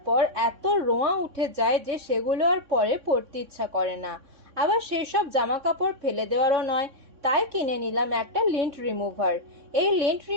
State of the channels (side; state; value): left; late; 3.6 ms